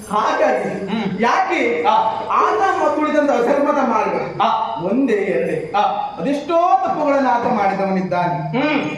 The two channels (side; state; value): both; identical; correlation 1.00